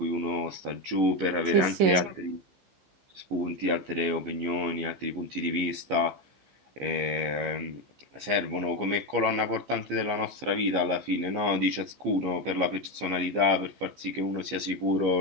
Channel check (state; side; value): late; left; 15 ms